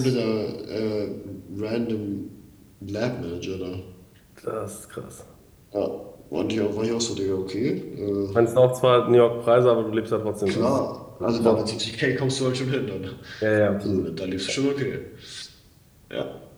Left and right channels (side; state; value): both; identical; correlation 1.00